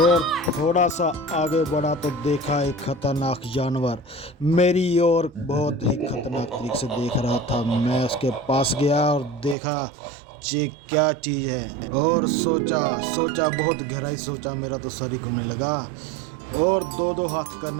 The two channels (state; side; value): drops out; left; at 9.6 s